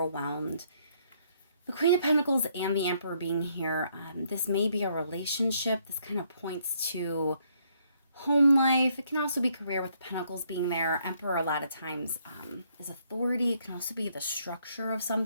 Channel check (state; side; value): inverted; both; correlation -0.69